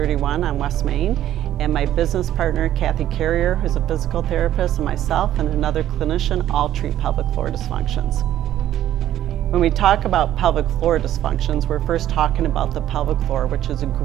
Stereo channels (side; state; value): left; quieter; 12.3 dB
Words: on West Main. And my business partner, Kathy Carrier, who's a physical therapist, and myself and another clinician all treat pelvic floor dysfunctions. When we talk about pelvic floor dysfunctions, we're first talking about the pelvic floor, which is a